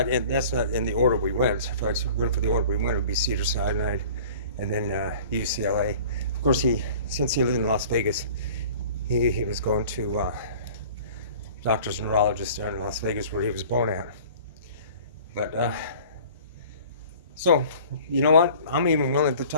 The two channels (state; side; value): inverted; both; correlation -0.46